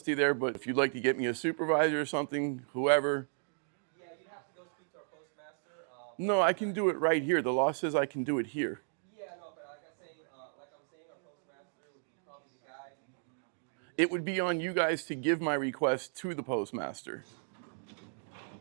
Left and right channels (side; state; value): left; silent; digital silence